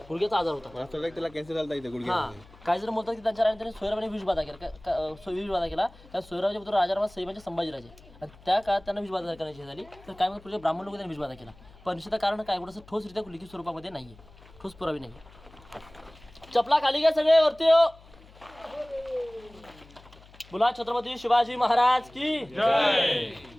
गुडघ्याचा आजार होता. त्याला कॅन्सर झाला इथे गुडघे. हा, काही जण म्हणतात की त्यांच्या राजाने सोयराबाने विषबाधा केला. कारण सोयराबाचे पुत्र राजाराम सई म्हणजे संभाजीराजे आणि त्या काळात त्यांना विषबाधा करण्याची झाली. तर काय म्हणतात पुढे ब्राह्मण लोक त्यांनी विषबाधा केला. पण निश्चित कारण काय एवढं ठोसरित्या लिखित स्वरूपामध्ये नाहीये, ठोस पुरावी नाही. चपला खाली घ्या सगळे वरती हो. बोला छत्रपती शिवाजी महाराज की जय.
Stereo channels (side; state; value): left; noise; hum, 23 dB below the sound